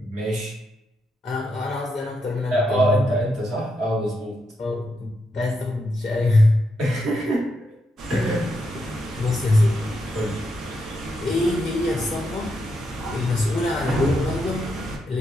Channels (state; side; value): normal; both; correlation 0.82